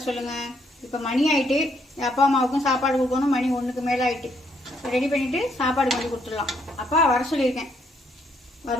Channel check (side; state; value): both; normal; correlation 0.71